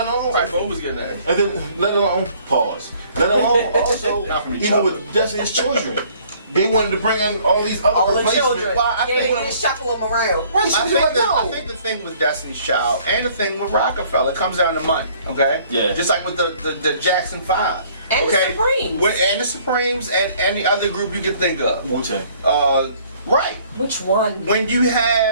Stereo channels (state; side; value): inverted; both; correlation -0.58